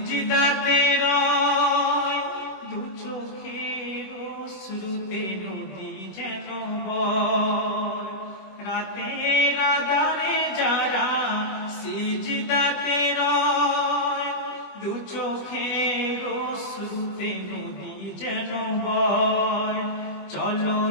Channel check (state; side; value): late; right; 20 ms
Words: রয়, দু চোখের অশ্রুতে নদী যেন বয়। রাতের আঁধারে যারা সিজদাতে রয়, দু চোখের অশ্রুতে নদী যেন বয়।